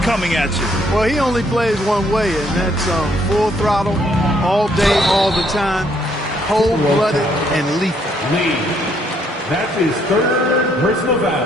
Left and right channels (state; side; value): normal; both; correlation 0.69